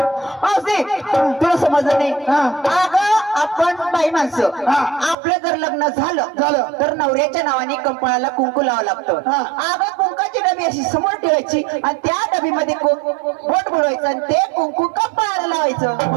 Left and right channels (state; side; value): drops out; left; at 5.2 s